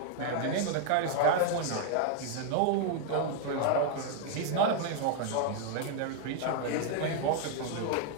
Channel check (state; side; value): different; both; correlation 0.00